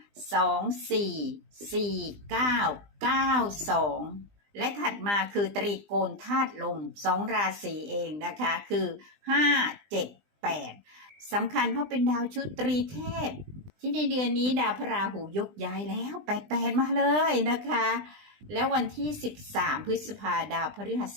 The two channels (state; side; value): late; left; 20 ms